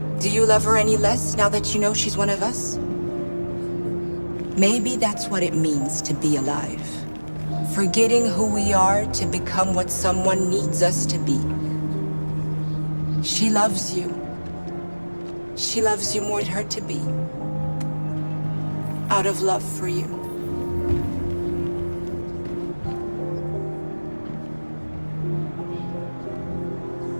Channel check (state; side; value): inverted; both; correlation -1.00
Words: Do you love her any less now that you know she's one of us? Maybe that's what it means to be alive. Forgetting who we are to become what someone needs us to be. She loves you. She loves you more than her to be. Out of love for you.